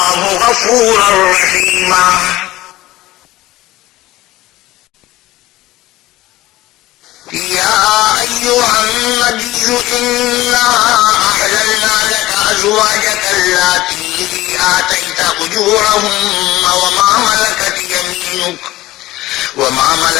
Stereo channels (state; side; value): quieter; right; 17.1 dB